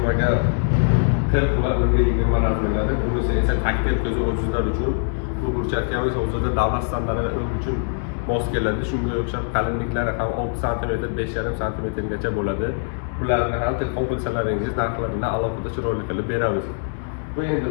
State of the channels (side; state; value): right; silent; digital silence